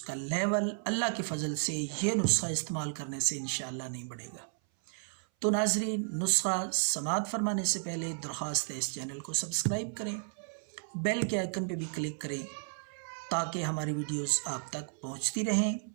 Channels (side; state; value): left; silent; 56 dB below the other